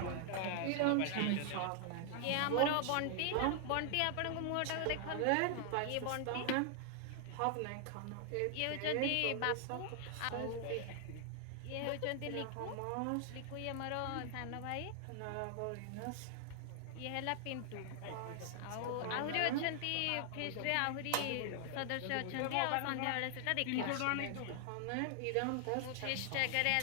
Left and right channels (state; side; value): different; both; correlation 0.00